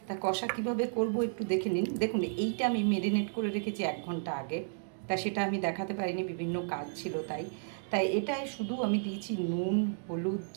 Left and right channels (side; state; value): left; silent; digital silence